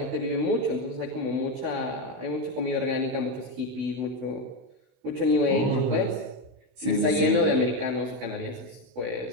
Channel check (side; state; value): left; late; 16 ms